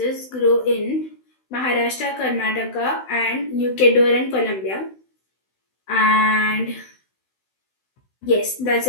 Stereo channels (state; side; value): late; right; 16 ms